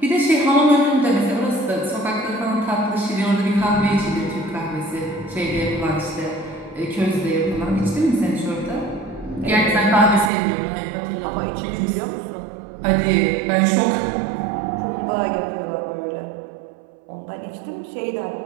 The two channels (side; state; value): left; drops out; at 10.3 s